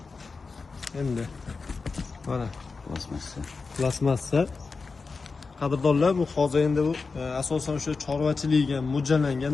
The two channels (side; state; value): right; quieter; 4.4 dB